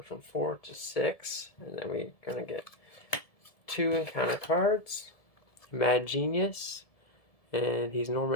from 4 to 6. And then we're going to get 2 encounter cards. Mad Genius. And he's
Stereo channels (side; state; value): right; late; 1.7 ms